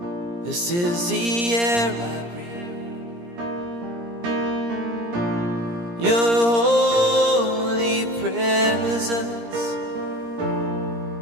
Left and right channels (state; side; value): late; left; 17 ms